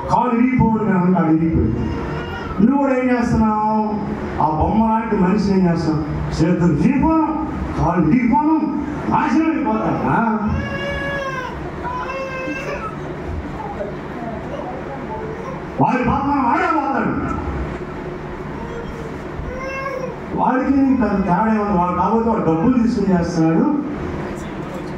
కాలు ఇరిగిపోవుడు కాకుండా అది ఇరిగిపోయింది. నువ్వు కూడా ఏం చేస్తున్నావు? ఆ బొమ్మ లాంటి మనిషి ఏం చేస్తావు? చేతులు ఇరిగిపోను, కాలు ఇరిగిపోను, నాశనం అయిపోతాడా? వాడి పాపం వాడే పోతాడు. వాడికి తేడా ఏమన్నా? వాడు కాబట్టి వాడు డబ్బులు తీసుకుని చేస్తున్నాడు.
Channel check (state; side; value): identical; both; correlation 1.00